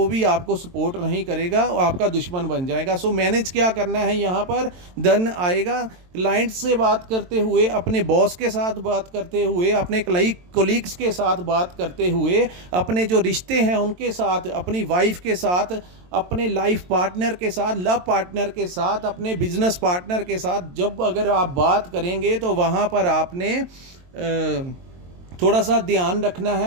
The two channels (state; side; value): late; left; 22 ms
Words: भी आपको सपोर्ट नहीं करेगा और आपका दुश्मन बन जाएगा। सो मैनेज क्या करना है, यहाँ पर धन आएगा क्लाइंट से बात करते हुए, अपने बॉस के साथ बात करते हुए, अपने कोलीग्स के साथ बात करते हुए, अपने जो रिश्ते हैं उनके साथ, अपनी वाइफ के साथ, अपने लाइफ पार्टनर के साथ, लव पार्टनर के साथ, अपने बिजनेस पार्टनर के साथ जब अगर आप बात करेंगे तो वहाँ पर आपने थोड़ा सा ध्यान रखना